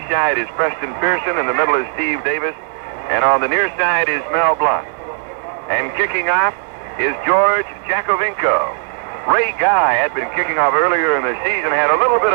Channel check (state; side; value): silent; left; 62 dB below the other